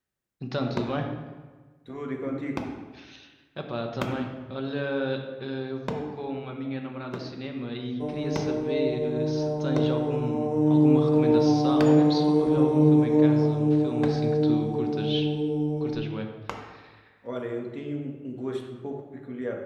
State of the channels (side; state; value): both; identical; correlation 1.00